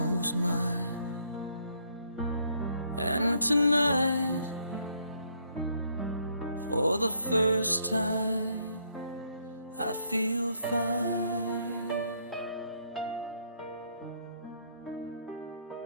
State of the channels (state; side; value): inverted; both; correlation -0.70